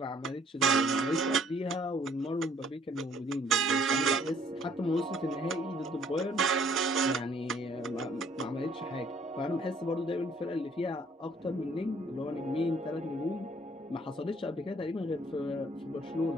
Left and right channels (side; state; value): both; normal; correlation 0.61